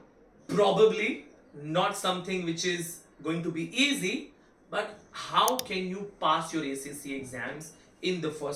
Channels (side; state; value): both; identical; correlation 1.00